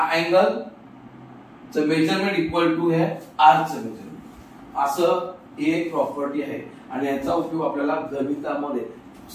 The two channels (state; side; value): identical; both; correlation 1.00